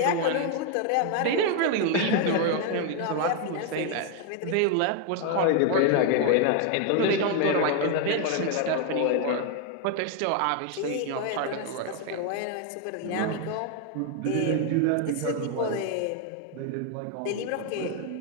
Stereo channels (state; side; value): different; both; correlation 0.01